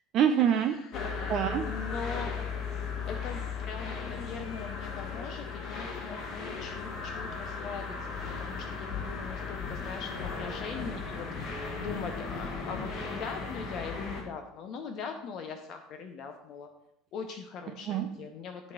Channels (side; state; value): both; normal; correlation 0.44